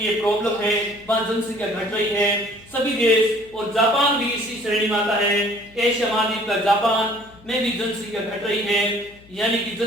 प्रॉब्लम है, वहां जनसंख्या घट रही है। सभी देश और जापान भी इसी श्रेणी में आता है। एशिया महाद्वीप का जापान में भी जनसंख्या घट रही है, यानी कि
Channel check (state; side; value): noise; left; hum, 26 dB below the sound